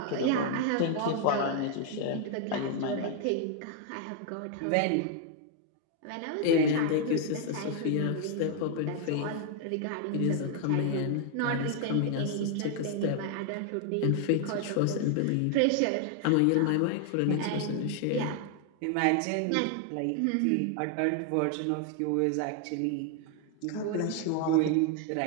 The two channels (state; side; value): different; both; correlation 0.00